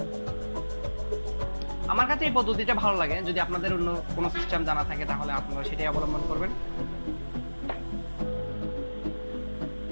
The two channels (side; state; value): both; inverted; correlation -1.00